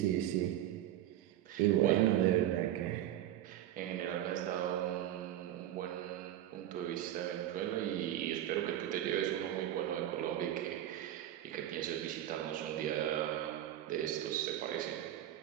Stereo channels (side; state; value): left; quieter; 12.5 dB